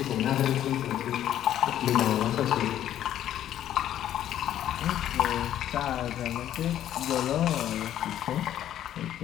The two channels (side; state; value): right; quieter; 11.6 dB